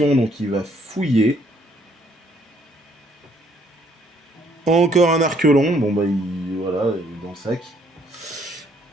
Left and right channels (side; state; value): both; normal; correlation 0.66